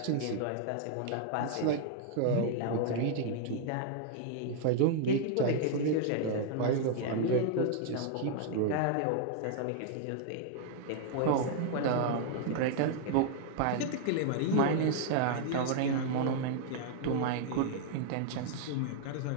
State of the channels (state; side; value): different; both; correlation -0.01